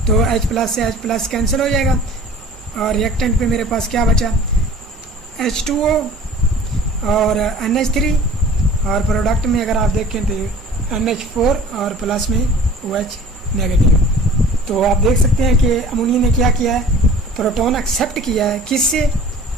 तो H प्लस से H प्लस कैंसिल हो जाएगा, और रिएक्टेंट पे मेरे पास क्या बचा, H2O और NH3, और प्रोडक्ट में अगर आप देखें तो NH4 और प्लस में OH नेगेटिव। तो आप देख सकते हैं कि अमोनिया ने क्या किया है, प्रोटॉन एक्सेप्ट किया है, किससे,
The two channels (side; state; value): both; normal; correlation 0.46